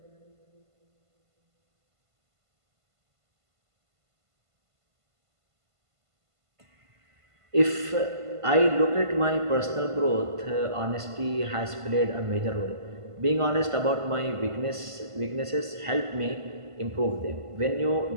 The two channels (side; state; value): left; late; 1.5 ms